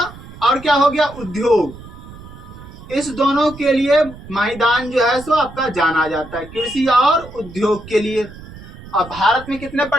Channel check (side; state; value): right; noise; rumble, 16 dB below the sound